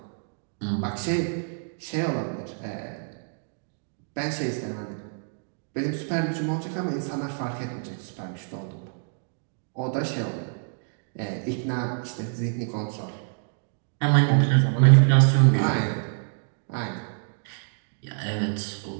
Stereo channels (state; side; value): silent; left; digital silence